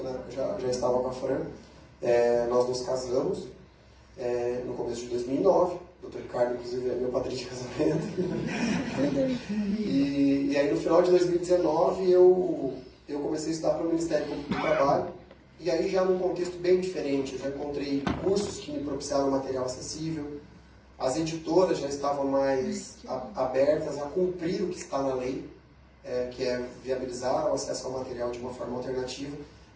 né, eu já estava com a Fran, nós nos casamos no começo de 2009, o Dr. Ricardo, inclusive, é meu padrinho de casamento. E aí no final de 2019 eu comecei a estudar para o Ministério Público do Trabalho, e aí já num contexto bem diferente, eu já encontrei cursos que me propiciaram material acessível, as editoras já estavam mais abertas a cumprir o que está na lei, que é viabilizar o acesso ao material de uma forma alternativa,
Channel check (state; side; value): identical; both; correlation 1.00